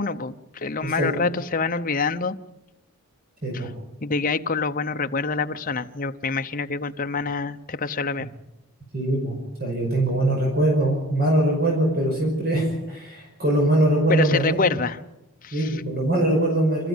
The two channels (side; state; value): both; normal; correlation 0.38